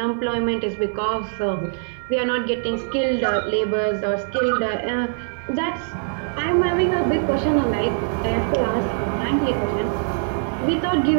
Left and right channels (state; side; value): silent; left; 57 dB below the other